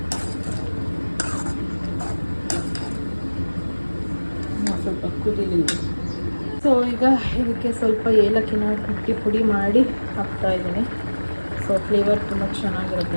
ಸ್ವಲ್ಪ ಕುದೀಲಿ. ಸೊ ಈಗ ಇದಕ್ಕೆ ಸ್ವಲ್ಪ ಏಲಕ್ಕಿನ ಕುಟ್ಟಿ ಪುಡಿ ಮಾಡಿ ಹಾಕ್ತಾ ಇದ್ದೀನಿ. ಸೊ ಫ್ಲೇವರ್ ತುಂಬ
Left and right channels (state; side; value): inverted; both; correlation -1.00